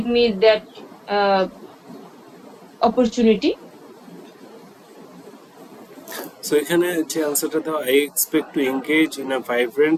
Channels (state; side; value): identical; both; correlation 1.00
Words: me that uh, opportunity. So এখানে যে আনসারটা দাও, I expect to engage in a